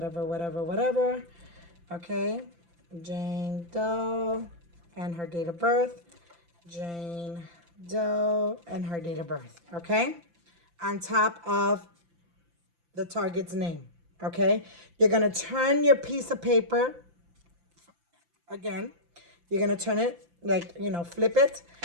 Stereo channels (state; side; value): late; left; 5.8 ms